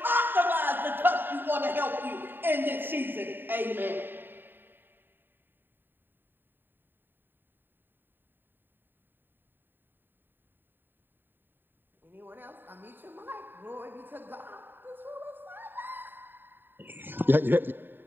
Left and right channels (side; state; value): left; late; 0.094 ms